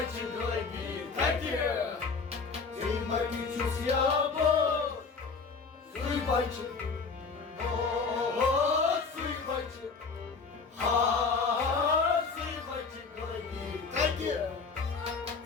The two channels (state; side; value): quieter; right; 4.8 dB